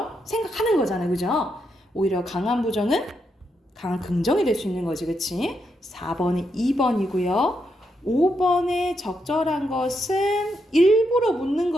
생각하는 거잖아요. 그죠? 오히려 강한 부정은 강한 긍정이 될 수 있는 거지. 그치? 4번이 2번이고요. 5번에 적절한 것은 일부러 묻는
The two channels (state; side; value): normal; both; correlation 0.81